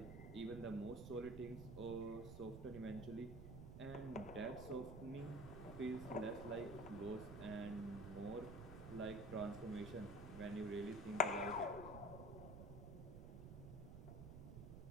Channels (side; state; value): right; noise; rumble, 8 dB below the sound